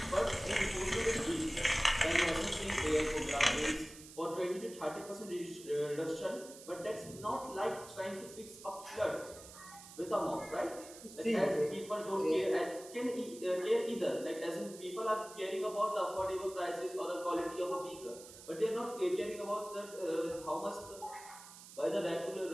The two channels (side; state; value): right; noise; hiss, 16 dB below the sound